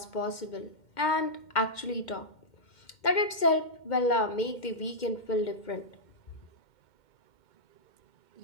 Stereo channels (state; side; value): late; right; 2.1 ms